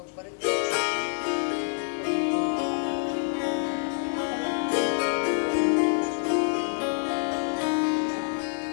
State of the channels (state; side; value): silent; right; digital silence